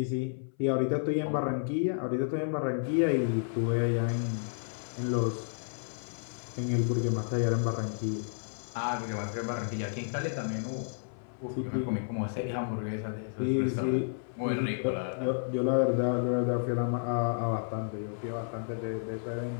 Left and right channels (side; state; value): right; silent; 57 dB below the other